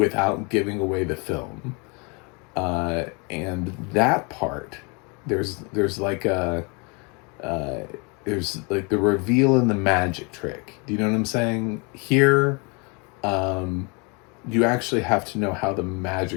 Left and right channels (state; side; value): quieter; right; 31.7 dB